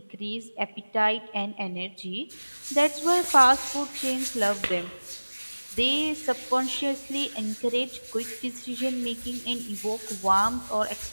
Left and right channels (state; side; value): inverted; both; correlation -1.00